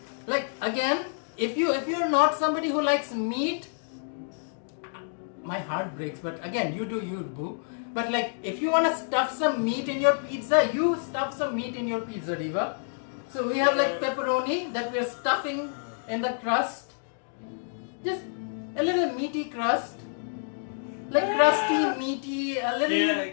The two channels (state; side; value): silent; right; digital silence